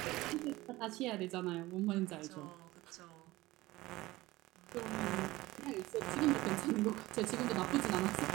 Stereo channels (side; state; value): left; quieter; 18.9 dB